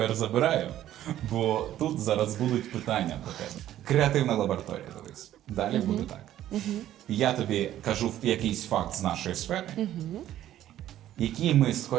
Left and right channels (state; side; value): quieter; left; 12.6 dB